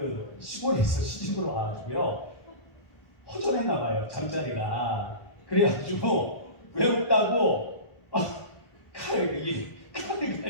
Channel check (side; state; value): right; late; 1.4 ms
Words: 시골에서 시집으로 와가지고요 허전했나 봐요, 잠자리가. 그래가지고 외롭다고 칼을